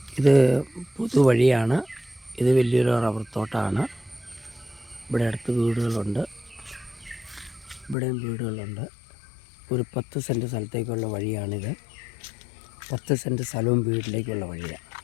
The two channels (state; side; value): drops out; right; at 8.0 s